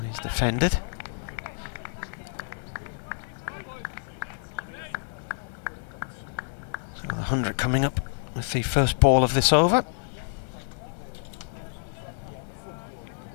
he's defended. So the 100 coming up with the first ball of this over.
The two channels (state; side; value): silent; right; digital silence